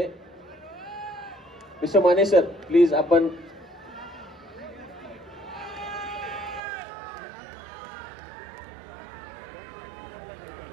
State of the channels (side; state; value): left; drops out; at 6.6 s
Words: मिस्टर माने सर प्लीज आपण